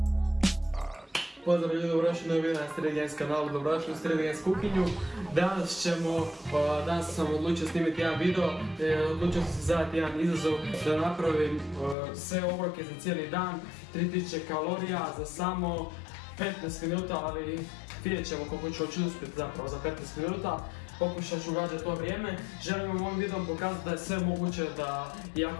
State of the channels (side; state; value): right; drops out; at 12.0 s